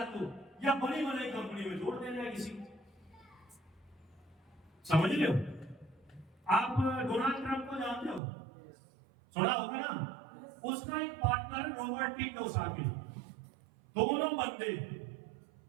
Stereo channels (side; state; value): left; drops out; at 8.2 s